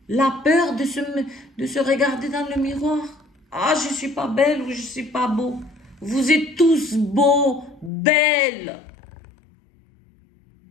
La peur de se regarder dans le miroir. Ah, je ne suis pas belle ou je ne suis pas beau. Vous êtes tous beaux, belles.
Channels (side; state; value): right; drops out; at 7.9 s